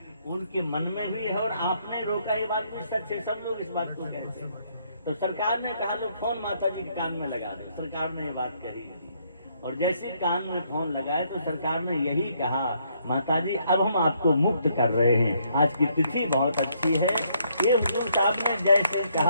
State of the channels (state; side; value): inverted; both; correlation -0.70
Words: उनके मन में भी है और आपने रोका, ये बात भी सच है, सब लोग इस बात को कहते हैं। तो सरकार ने कहा लो फोन माता जी के कान में लगा दो। सरकार ने ये बात कही, और जैसे कान में फोन लगाए तो सरकार ने यही कहा, माता जी अब हम आपको मुक्त कर रहे हैं, आज की तिथि बहुत अच्छी है। ये हुजूर साहब ने जैसे